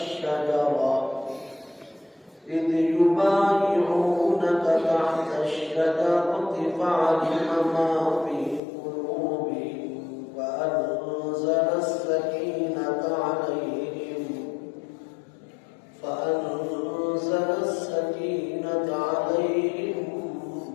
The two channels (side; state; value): right; drops out; at 8.6 s